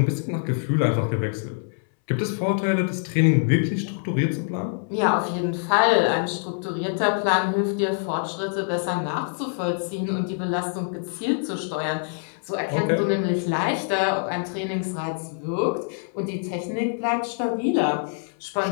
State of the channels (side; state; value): right; silent; 62 dB below the other